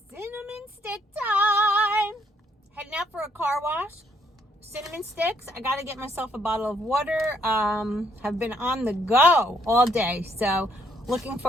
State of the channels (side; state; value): both; normal; correlation 0.69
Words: Cinnamon stick time. Heading out for a car wash. Cinnamon sticks. I got to get myself a bottle of water. Have been on the go all day. So looking